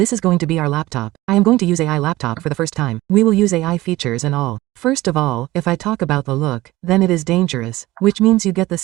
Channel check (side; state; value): left; quieter; 17.9 dB